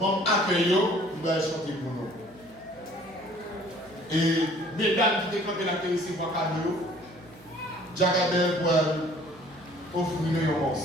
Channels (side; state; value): right; noise; hum, 26 dB below the sound